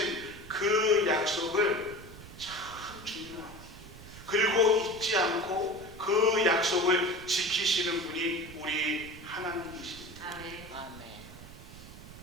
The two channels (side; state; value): right; noise; rumble, 16 dB below the sound